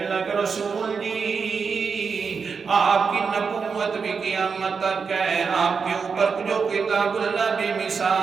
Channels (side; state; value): left; quieter; 5.5 dB